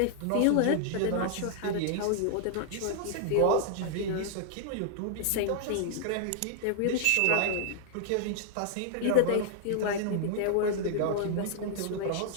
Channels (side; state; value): both; different; correlation -0.01